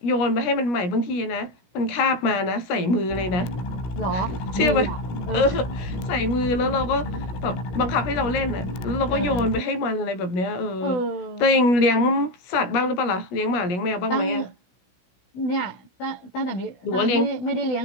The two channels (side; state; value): right; late; 17 ms